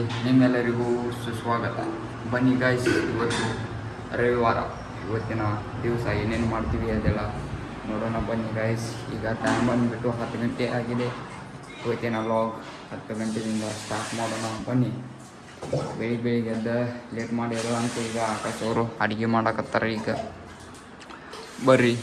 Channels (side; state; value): both; identical; correlation 1.00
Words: ನಿಮ್ಮೆಲ್ಲರಿಗೂ ಸುಸ್ವಾಗತ. ಬನ್ನಿ ಗಾಯ್ಸ್, ಇವತ್ತು ರವಿವಾರ, ಇವತ್ತಿನ ದಿವಸ ಏನೇನು ಮಾಡ್ತೀವಿ ಅದೆಲ್ಲ ನೋಡೋಣ ಬನ್ನಿ ಗಾಯ್ಸ್. ಈಗ ಟೈಮ್ ಬಂದುಬಿಟ್ಟು 10 ಗಂಟೆ ಆಗಿದೆ. ಇವತ್ತಿನ ಲಾಗ್ 10 ಗಂಟೆಯಿಂದ ಸ್ಟಾರ್ಟ್ ಮಾಡೋಣ ಬನ್ನಿ. ಬೆಳಿಗ್ಗೆ ಎದ್ದ ಲೇಟ್ ಮಾಡಿರೋ ಅಂತ ಈಗ ಆಕಾಶ್ ಅವರು ಅಡುಗೆ ಮಾಡಕತ್ತಾರೆ. ಈಗ ಬರ್ರಿ